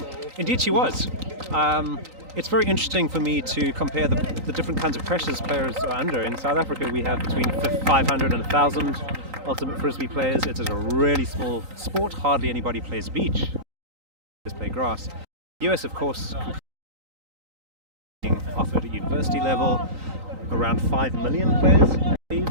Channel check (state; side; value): late; left; 3.9 ms